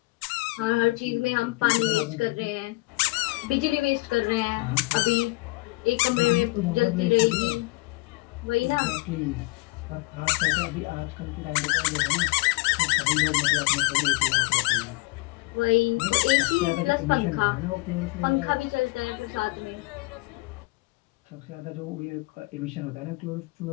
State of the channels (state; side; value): quieter; right; 24.1 dB